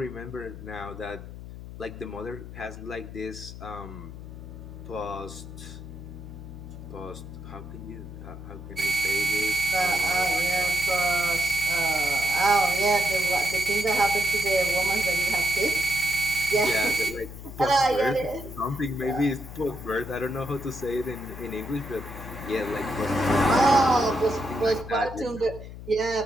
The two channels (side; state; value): left; noise; hum, 12 dB below the sound